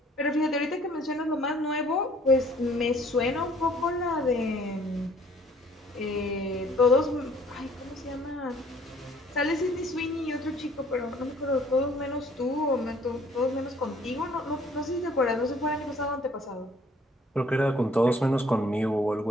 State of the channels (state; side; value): normal; both; correlation 0.58